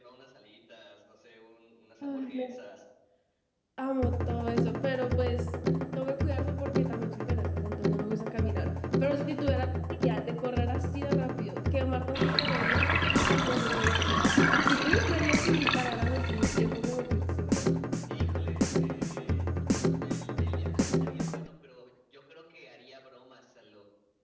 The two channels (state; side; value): identical; both; correlation 1.00